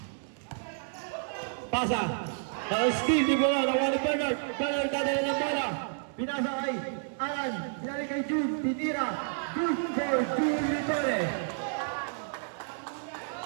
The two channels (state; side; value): silent; left; digital silence